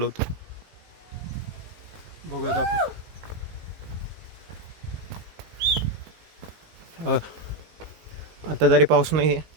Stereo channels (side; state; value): left; late; 19 ms